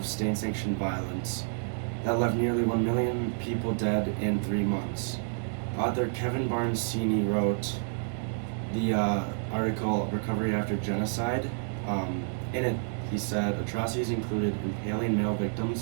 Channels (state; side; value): silent; left; 58 dB below the other